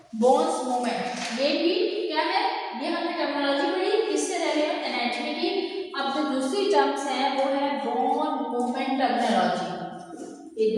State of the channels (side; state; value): both; identical; correlation 1.00